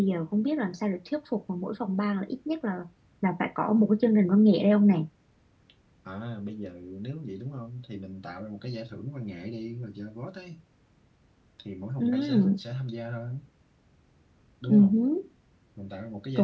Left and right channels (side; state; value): both; identical; correlation 1.00